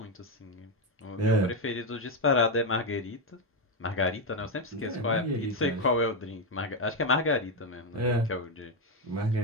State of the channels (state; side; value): normal; both; correlation 0.06